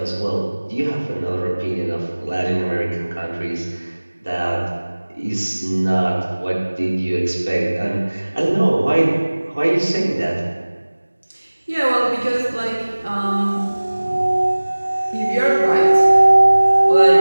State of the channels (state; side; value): inverted; both; correlation -1.00